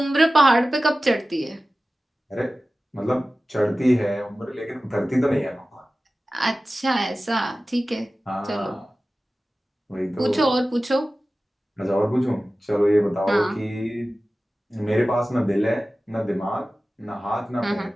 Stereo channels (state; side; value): normal; both; correlation 0.96